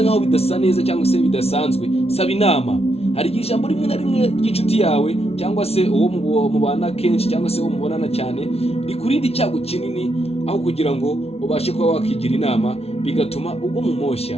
nkaho bidasa neza cyangwa se bidasanzwe, saba inama. Hari igihe ijambo rimwe na rimwe ry'inshuti yawe cyangwa se uwo mubana kenshi cyangwa se uwo mubonana cyane rikurinda icyago kinini, aho kugira ngo ubashe kuba wakigira inama bigatuma ugwa mu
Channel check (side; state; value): right; late; 0.30 ms